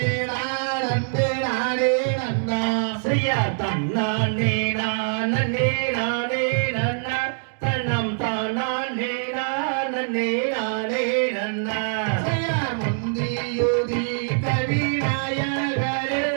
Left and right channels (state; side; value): silent; left; digital silence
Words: நாடனே நாடே நன்னா. செய்யார் தன்னானே நானே நாடே நன்னா தனம் தானே நானே நாடே நன்னா. செய்யார் முந்தியுதி கவி நாயகரே